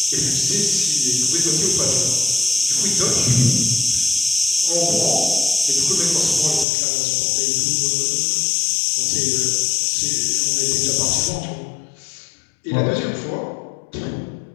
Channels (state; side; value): drops out; right; at 6.7 s